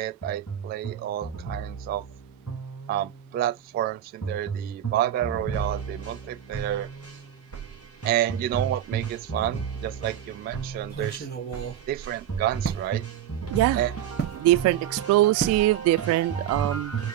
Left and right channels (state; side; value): quieter; left; 11.0 dB